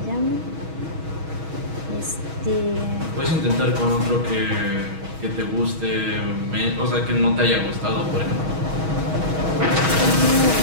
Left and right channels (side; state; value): left; late; 6.3 ms